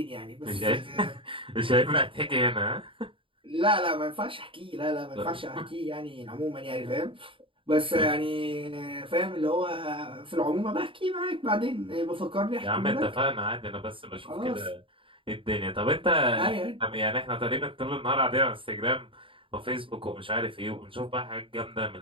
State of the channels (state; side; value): late; left; 0.25 ms